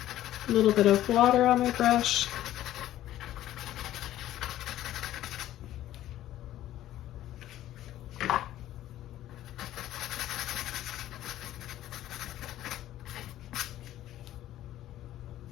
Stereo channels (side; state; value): right; quieter; 13.5 dB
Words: A little bit of water on my brush.